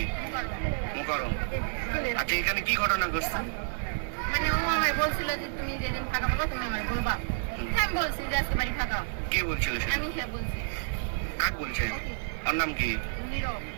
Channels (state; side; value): silent; left; digital silence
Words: মুকাররম। আচ্ছা, এখানে কি ঘটনা ঘটছে? মানে ও আমায় বলছিল যে তুমি যেদিন ফাঁকা পাবা তুমি আমায় বলবা। আমি বলছি যে আজকে বাড়ি ফাঁকা। কে বলছিল সেটা? আমি সে বলছি। কাক বলছে? ওর নাম কি? নীরব।